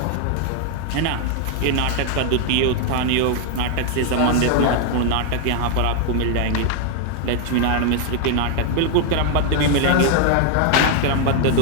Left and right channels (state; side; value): different; both; correlation 0.00